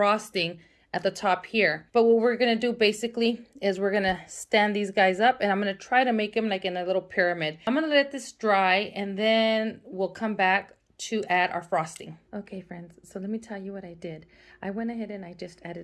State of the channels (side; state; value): both; identical; correlation 1.00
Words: at the top here. But what we're gonna do basically is we're gonna stand these guys up, and I'm gonna try to make them like in a little pyramid. I'm gonna let this dry, and then we'll come back to add our frosting. Okay friends, so let me tell you what I did. I went ahead and I just